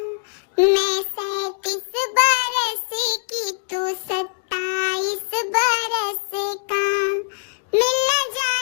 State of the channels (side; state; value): right; silent; digital silence